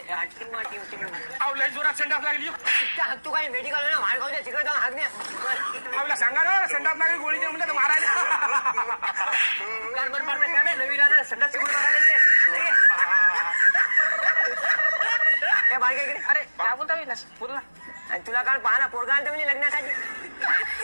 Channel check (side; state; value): both; inverted; correlation -1.00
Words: हातीमा टीम टीम आवला जोरात संडास लागली तू काय मेडिकल ना मार खाऊ तिकडे जाऊन हागणे आवला सांगा ना संडास लागली गोळी दे म्हणजे मारायला कार्बन पार्टनर काय नवीन आला संडास शिकून मारायला ते बाळगे इकडे अरे काय बोलता पूर्ण आणि तुला काल पाहा ना पोरगा आणतो म्हणजे लग्नासाठी